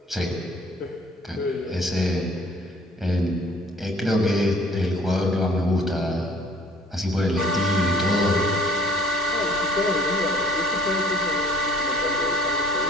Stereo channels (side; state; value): both; normal; correlation 0.55